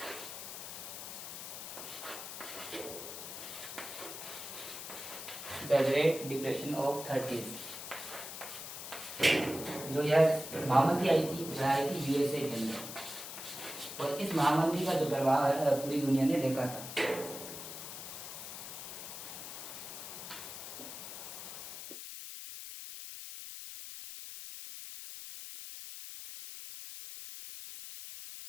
of 30s। जो यह महामंदी आई थी वह आई थी यूएसए के अंदर, और इस महामंदी का जो प्रभाव है पूरी दुनिया ने देखा था।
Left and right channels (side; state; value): left; noise; hiss, 9 dB below the sound